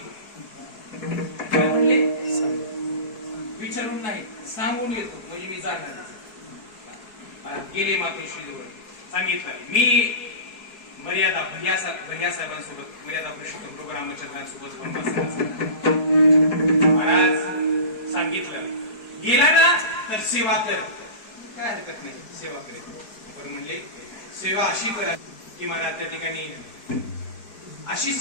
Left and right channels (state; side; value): late; right; 4.7 ms